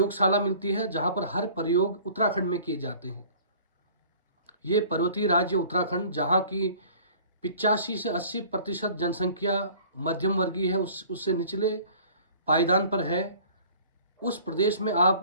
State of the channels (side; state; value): both; inverted; correlation -0.49